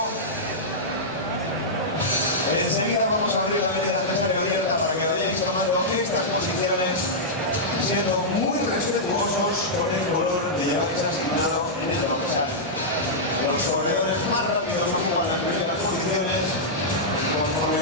Enseguida vamos a abrir la media de abierta para que vayáis tomando estas posiciones, siendo muy respetuosos con el color que lleváis asignado en el dorsal. Los corredores más rápidos ocupan las primeras posiciones,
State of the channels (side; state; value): both; normal; correlation -0.10